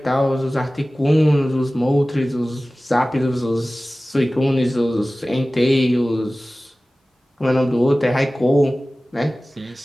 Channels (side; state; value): both; normal; correlation 0.97